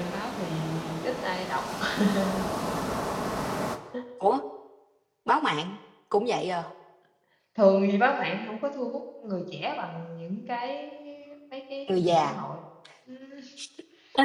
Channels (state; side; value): identical; both; correlation 1.00